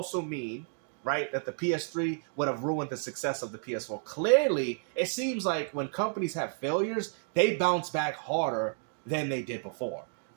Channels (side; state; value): left; silent; 57 dB below the other